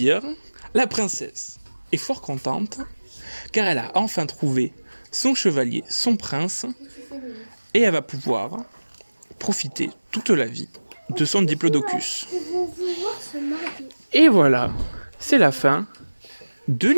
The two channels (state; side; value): inverted; both; correlation -1.00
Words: La princesse est fort contente, car elle a enfin trouvé son chevalier, son prince, et elle va pouvoir profiter toute la vie de son diplodocus. Et voilà, c'est la fin de